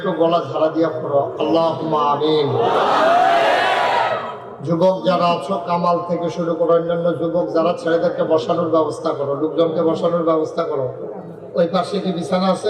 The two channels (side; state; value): both; identical; correlation 1.00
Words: গলা ঝাড়া দিয়া পড়ো আল্লাহুম্মা আমিন। যুবক যারা আছো, কামাল থেকে শুরু করে অন্যান্য যুবক যারা, ছেলেদেরকে বসানোর ব্যবস্থা করো, লোকজনকে বসানোর ব্যবস্থা করো। ওই পাশে কি বিছানা